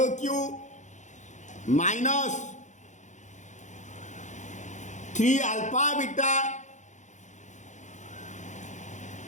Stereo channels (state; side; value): late; right; 0.35 ms